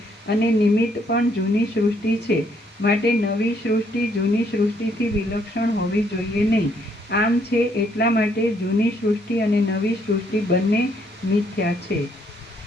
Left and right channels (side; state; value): both; normal; correlation 0.69